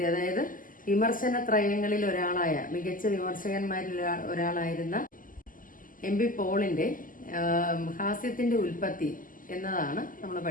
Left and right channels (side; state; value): right; late; 0.40 ms